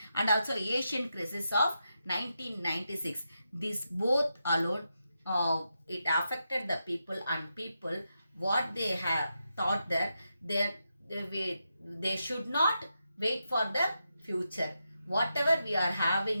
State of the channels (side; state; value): both; inverted; correlation -0.86